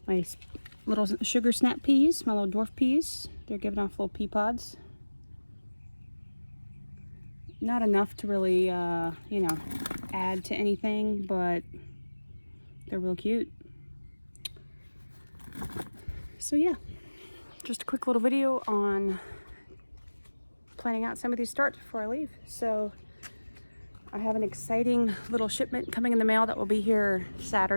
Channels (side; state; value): both; inverted; correlation -1.00